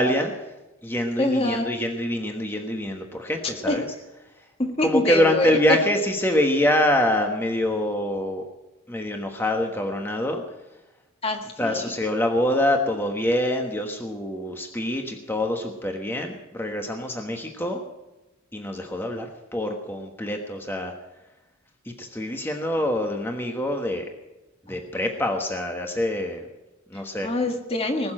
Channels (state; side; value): normal; both; correlation 0.57